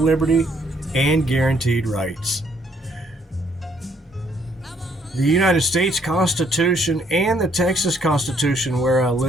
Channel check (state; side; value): normal; both; correlation 0.68